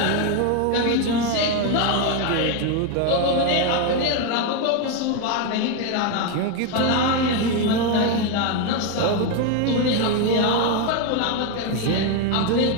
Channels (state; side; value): different; both; correlation 0.02